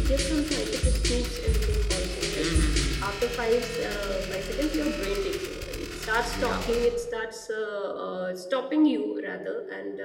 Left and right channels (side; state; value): both; identical; correlation 1.00